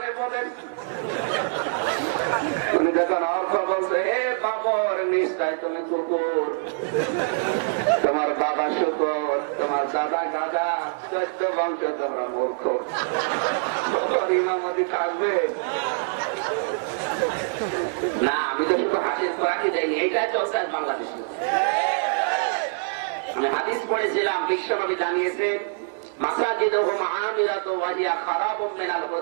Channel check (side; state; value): left; silent; digital silence